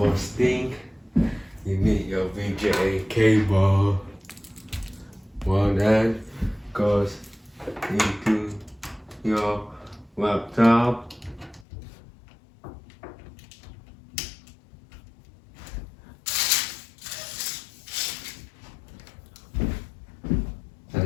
thing, you need your VGA cable. Well, that goes into your laptop.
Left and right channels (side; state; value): right; drops out; at 11.7 s